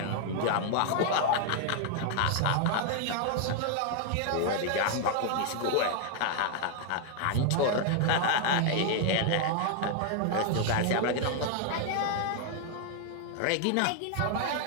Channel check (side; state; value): both; different; correlation 0.00